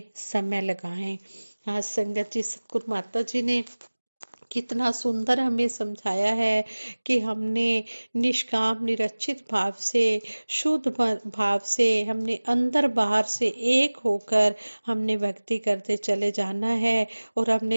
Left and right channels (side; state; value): both; inverted; correlation -1.00